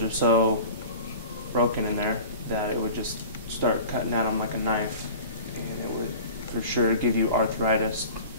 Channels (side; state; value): both; inverted; correlation -0.39